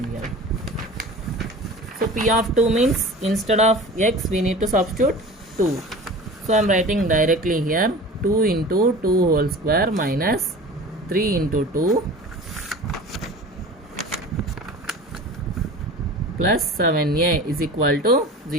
So p of 2 means instead of x we need to substitute 2. So I am writing directly here 2 into 2 whole square minus 3 into 2 plus 7a is equal to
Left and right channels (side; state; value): both; normal; correlation 0.38